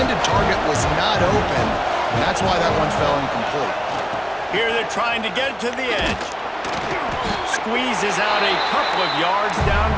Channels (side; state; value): both; identical; correlation 1.00